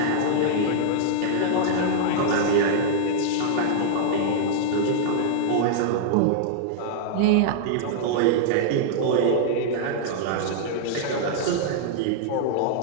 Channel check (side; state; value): both; different; correlation -0.02